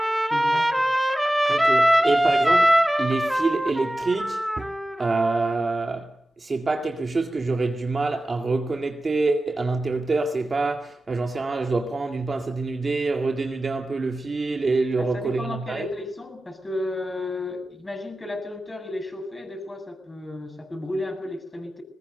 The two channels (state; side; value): normal; both; correlation 0.95